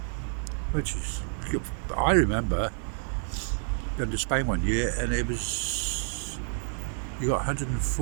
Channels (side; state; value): left; silent; 59 dB below the other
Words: which is, I remember going to Spain one year, and it was, you got